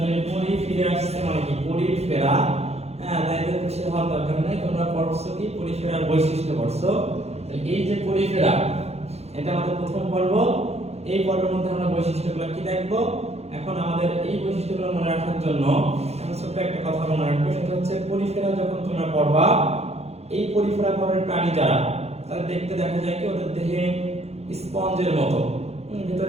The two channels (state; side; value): late; left; 0.31 ms